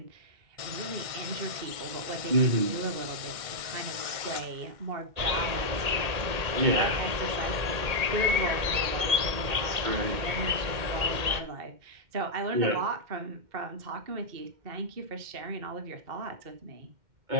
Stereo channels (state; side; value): late; left; 2.1 ms